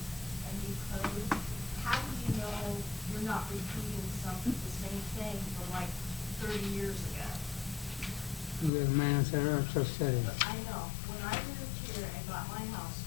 code, how do you know you're not repeating the same thing from like 30 years ago? The man said, just said it. I know, when I moved here and got my house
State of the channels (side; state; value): right; drops out; at 8.7 s